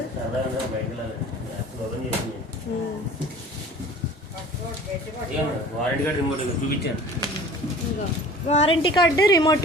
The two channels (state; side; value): normal; both; correlation 0.44